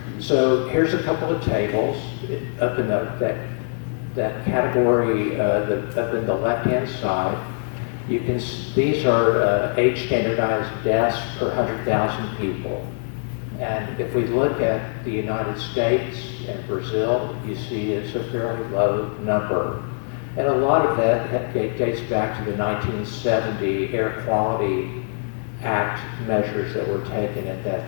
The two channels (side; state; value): right; silent; 63 dB below the other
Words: So here's a couple of tables up in that category up in the left-hand side. These are age standardized deaths per 100,000 people. And if we look at the United States and Brazil, you see it's a fairly low number. And a lot of that dates back to the 1970 Air Quality Act measures that were taken at that